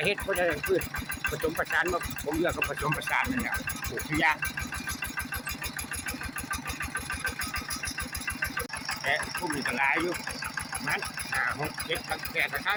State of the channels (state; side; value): identical; both; correlation 1.00